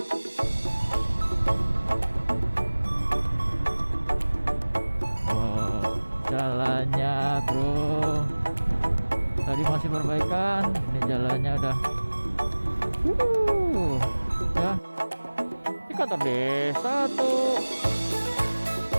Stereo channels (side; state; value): both; inverted; correlation -1.00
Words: Wow, jalannya bro tadi masih perbaikan, ini jalannya udah ya. Ini kantor desa tuh,